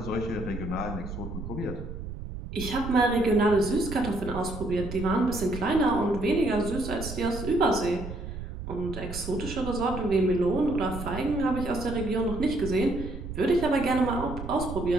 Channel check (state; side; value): noise; right; rumble, 8 dB below the sound